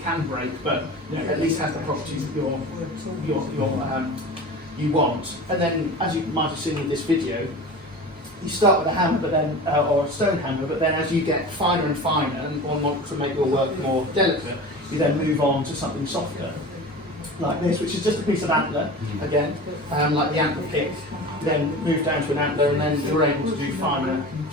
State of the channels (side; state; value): both; normal; correlation 0.34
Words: can break, but at least has the properties that you want. And then, as you might have seen in this video, you start with a hammer, but then or a stone hammer, but then as you get finer and finer and want to make your work more delicate, you then move on to something softer, like this, which is just a piece of antler again, like the antler pick. You then move down to an antler, and then you're able to do finer